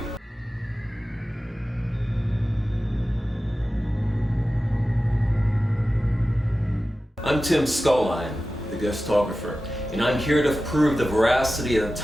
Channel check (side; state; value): both; normal; correlation 0.94